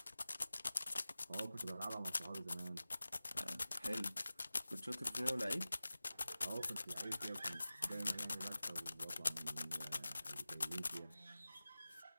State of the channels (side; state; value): both; inverted; correlation -0.96